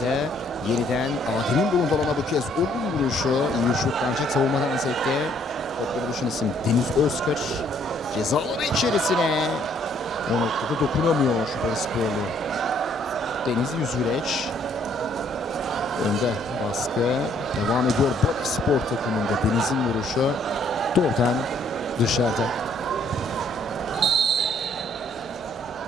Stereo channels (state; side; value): normal; both; correlation 0.65